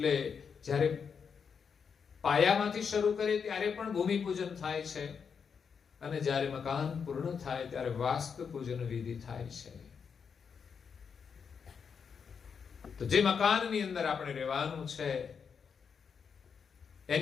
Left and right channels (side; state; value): right; quieter; 6.4 dB